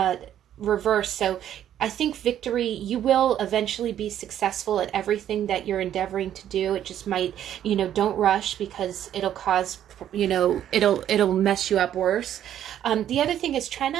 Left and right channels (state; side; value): quieter; left; 10.8 dB